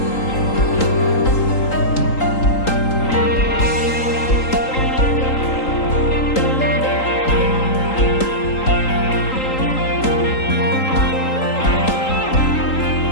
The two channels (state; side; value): late; right; 3.8 ms